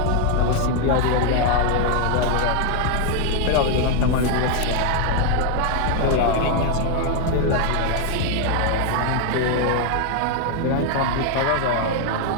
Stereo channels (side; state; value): both; different; correlation 0.00